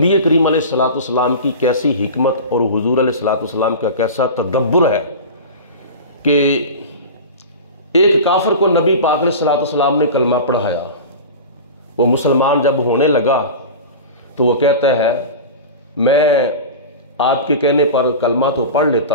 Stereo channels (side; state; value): both; inverted; correlation -0.30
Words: کریم علیہ الصلوۃ والسلام کی کیسی حکمت اور حضور علیہ الصلوۃ والسلام کا کیسا تدبر ہے کہ ایک کافر کو نبی پاک علیہ الصلوۃ والسلام نے کلمہ پڑھایا، وہ مسلمان جب ہونے لگا تو وہ کہتا ہے میں آپ کے کہنے پر کلمہ تو پڑھ لیتا